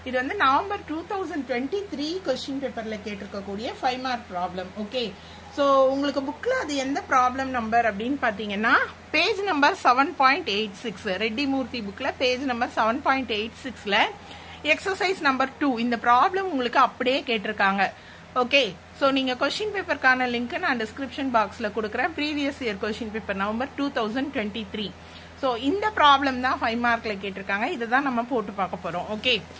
இது வந்து நவம்பர் 2023 கொஸ்டின் பேப்பர்ல கேட்டிருக்கக்கூடிய 5 மார்க் ப்ராப்ளம். ஓகே, சோ உங்களுக்கு புக்ல அது எந்த ப்ராப்ளம் நம்பர் அப்படின்னு பாத்தீங்கன்னா பேஜ் நம்பர் 7.86, ரெட்டி மூர்த்தி புக்ல பேஜ் நம்பர் 7.86ல எக்ஸசைஸ் நம்பர் 2 இந்த ப்ராப்ளம் உங்களுக்கு அப்படியே கேட்டிருக்காங்க. ஓகே, சோ நீங்க கொஸ்டின் பேப்பருக்கான லிங்க் நான் டிஸ்கிரிப்ஷன் பாக்ஸ்ல கொடுக்குறேன். Previous year question paper November 2023. So இந்த ப்ராப்ளம் தான் 5 மார்க்ல கேட்டிருக்காங்க. இதுதான் நம்ம போட்டு பார்க்க போறோம். ஓகே,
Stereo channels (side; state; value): both; identical; correlation 1.00